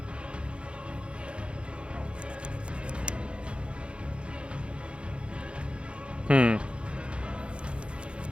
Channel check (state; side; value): late; left; 0.057 ms